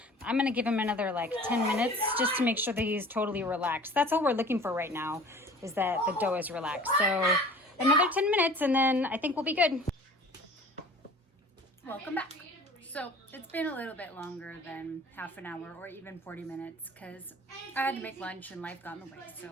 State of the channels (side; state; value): both; normal; correlation 0.45